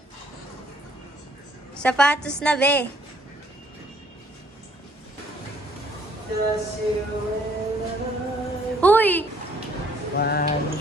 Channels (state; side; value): normal; both; correlation 0.63